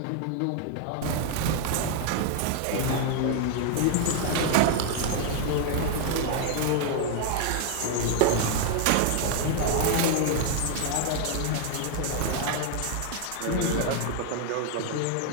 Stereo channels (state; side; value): different; both; correlation 0.00